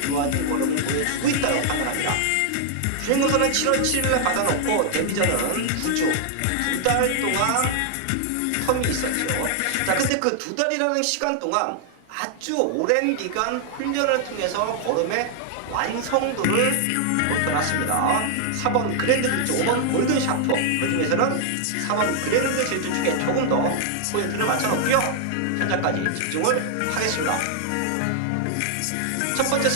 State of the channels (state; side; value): different; both; correlation 0.00